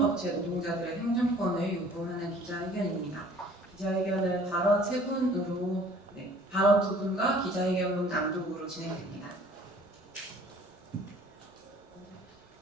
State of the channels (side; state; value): both; normal; correlation 0.52